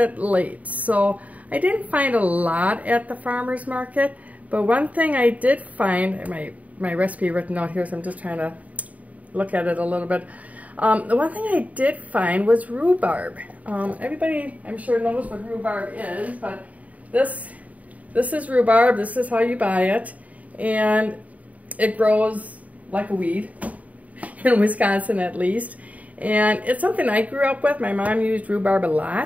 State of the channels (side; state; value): left; late; 0.071 ms